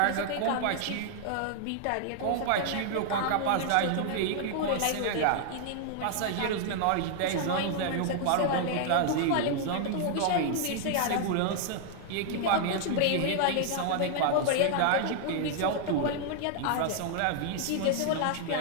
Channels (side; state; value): both; different; correlation 0.00